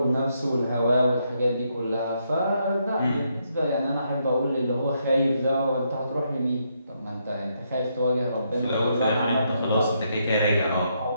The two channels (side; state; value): both; inverted; correlation -0.77